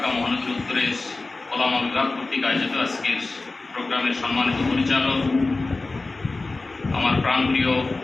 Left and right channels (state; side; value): quieter; right; 3.4 dB